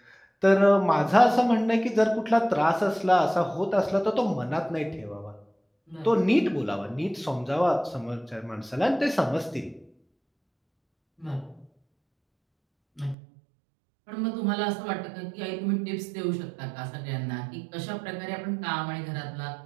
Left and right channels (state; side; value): drops out; left; at 13.2 s